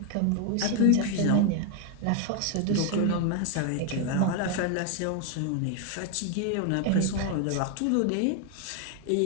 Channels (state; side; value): different; both; correlation 0.01